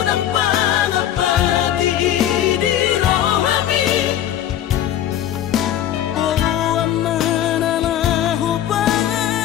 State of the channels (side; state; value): right; quieter; 11.3 dB